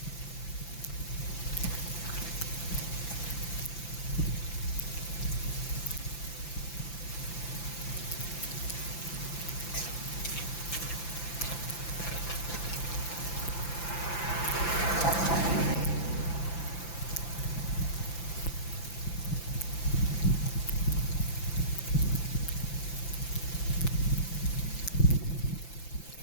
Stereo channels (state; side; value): late; right; 5.9 ms